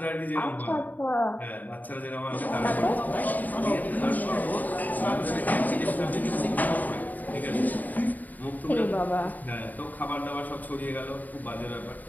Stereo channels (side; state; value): right; late; 0.082 ms